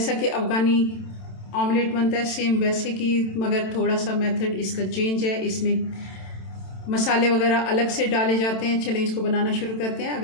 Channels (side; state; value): right; late; 27 ms